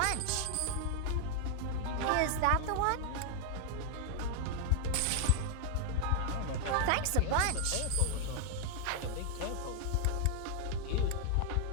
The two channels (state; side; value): different; both; correlation 0.00